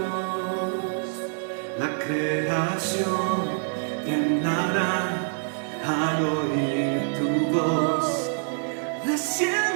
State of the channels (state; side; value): silent; left; 61 dB below the other